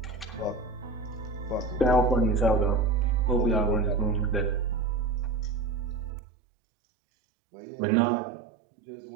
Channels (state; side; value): drops out; left; at 6.1 s